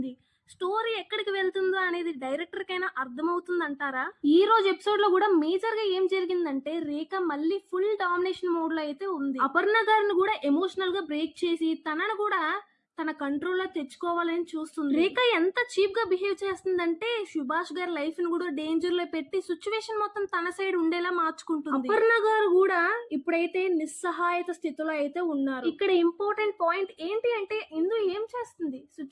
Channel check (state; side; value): identical; both; correlation 1.00